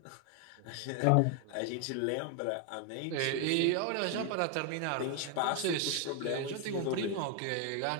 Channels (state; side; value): different; both; correlation 0.01